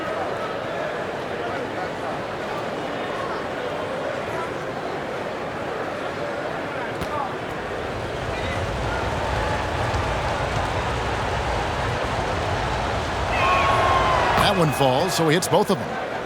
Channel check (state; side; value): identical; both; correlation 1.00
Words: That one falls, so he hits both of them.